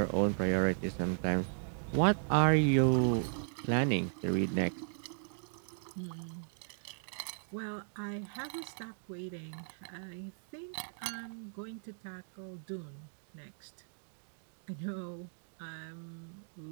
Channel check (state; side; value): silent; left; digital silence